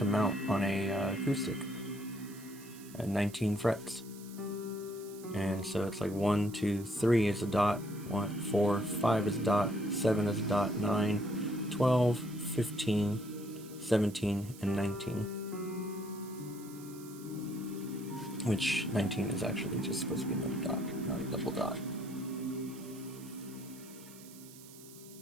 amount on a acoustic at 19 frets. And so it's like 1, 2, 3 is a dot, 1, 4, 5 is dot, 7 is dot, 9, 12, 15, 17, and 19. Which 19 is actually just supposed to be another dot, not a double dot.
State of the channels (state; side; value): noise; right; hiss, 19 dB below the sound